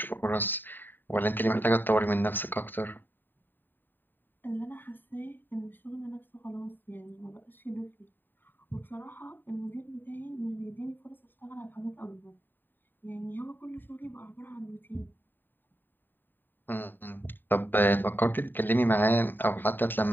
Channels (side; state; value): right; late; 0.093 ms